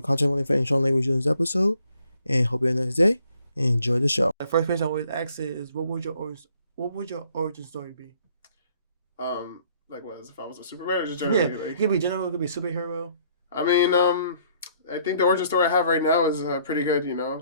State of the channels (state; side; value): inverted; both; correlation -0.63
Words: content warning for any strong language in this episode. And hope you have a nice day and enjoy the show. The first question I always ask is, what would your origin story be? Like what? If I was a Superman or just generally? Yeah, it could be general, it could be superhero. I mean, I think the origin story I have right now is pretty good. You know,